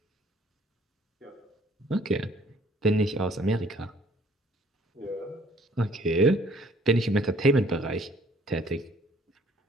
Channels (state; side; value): normal; both; correlation 0.59